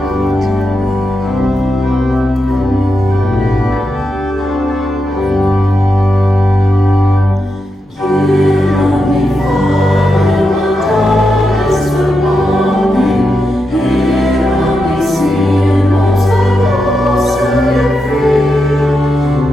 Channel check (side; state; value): both; normal; correlation 0.86